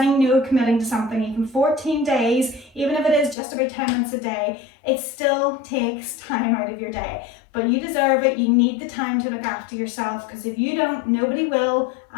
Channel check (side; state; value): right; drops out; at 3.4 s